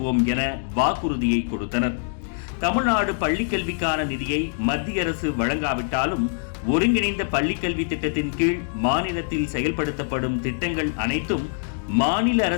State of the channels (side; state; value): right; silent; digital silence